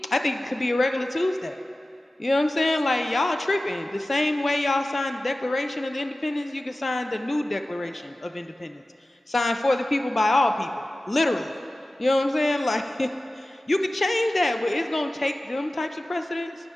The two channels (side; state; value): both; normal; correlation 0.96